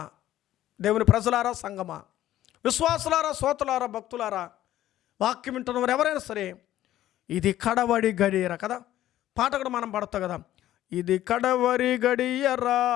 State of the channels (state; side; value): quieter; right; 13.4 dB